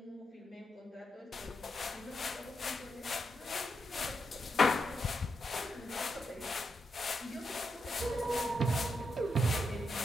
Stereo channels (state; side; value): normal; both; correlation 0.83